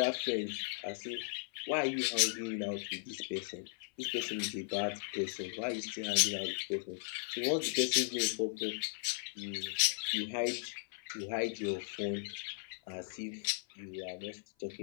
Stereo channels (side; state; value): right; silent; 53 dB below the other